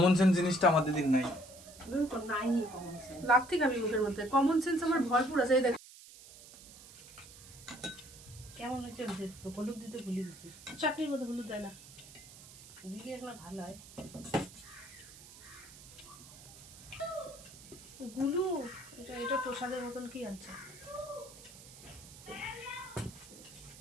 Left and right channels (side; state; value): right; noise; hiss, 18 dB below the sound